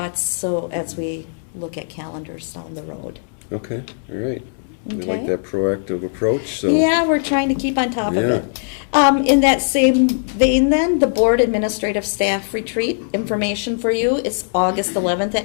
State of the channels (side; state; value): right; silent; digital silence